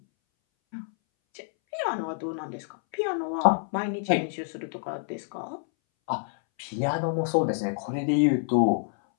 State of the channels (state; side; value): silent; right; 60 dB below the other